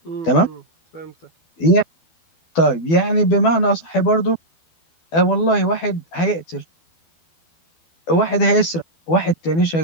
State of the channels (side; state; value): right; late; 12 ms